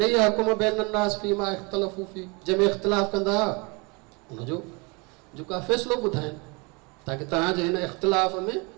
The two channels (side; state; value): left; quieter; 29.3 dB